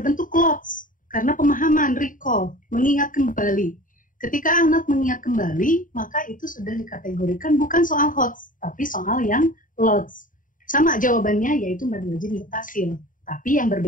clause. Karena pemahaman, recall, mengingat kembali. Ketika anak mengingat kembali, maka itu sudah dikategorikan bukan soal hot, tapi soal yang lots. Sama jawabannya, yaitu mad wajib mutasil. Tapi yang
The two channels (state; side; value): late; right; 0.39 ms